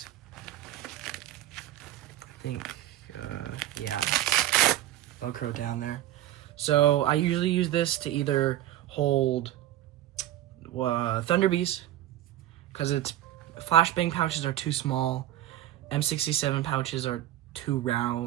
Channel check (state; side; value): quieter; left; 13.7 dB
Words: I think, yeah, Velcro down there. So I usually use this to either hold Thunderbees, because its flashbang pouches are too small, M67 pouches are too